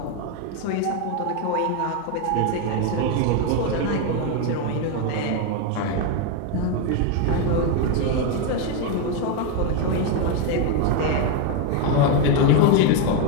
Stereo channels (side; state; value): both; different; correlation 0.02